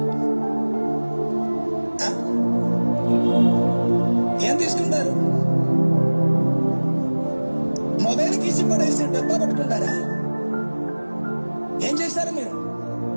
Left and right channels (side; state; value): both; inverted; correlation -1.00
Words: ఏం తీసుకుంటారు? మొబైల్ తీసి పడేసి డబ్బా పట్టుకుంటారా? ఏం చేస్తారు మీరు?